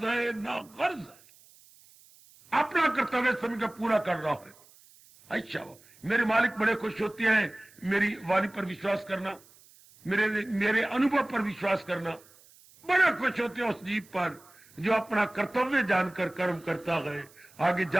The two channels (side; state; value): right; noise; hiss, 26 dB below the sound